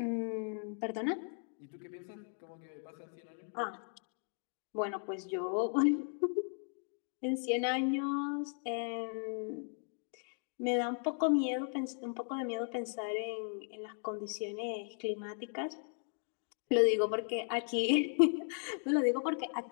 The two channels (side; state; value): right; silent; 53 dB below the other